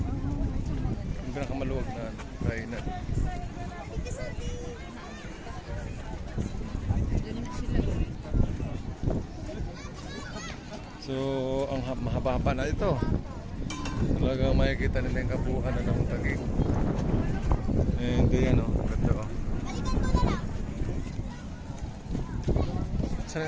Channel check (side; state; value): both; identical; correlation 1.00